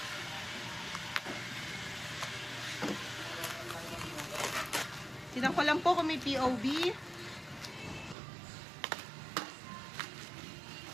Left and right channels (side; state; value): left; drops out; at 8.2 s